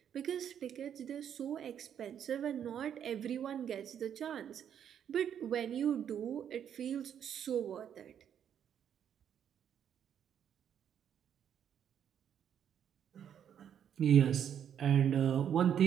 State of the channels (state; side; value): quieter; left; 9.0 dB